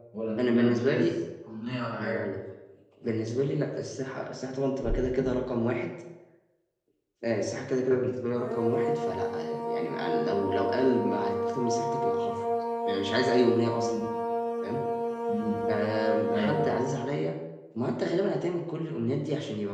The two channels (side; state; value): both; identical; correlation 1.00